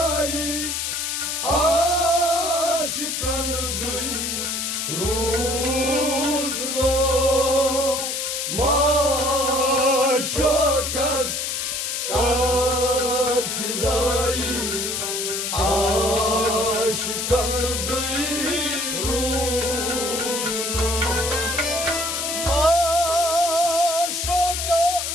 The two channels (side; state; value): left; noise; hiss, 2 dB below the sound